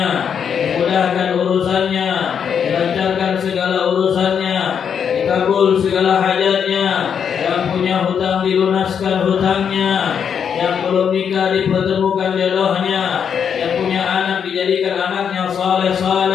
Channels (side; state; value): right; quieter; 7.5 dB